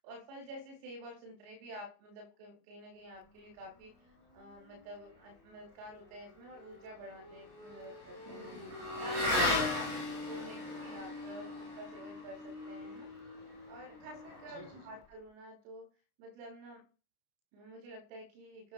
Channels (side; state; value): left; late; 33 ms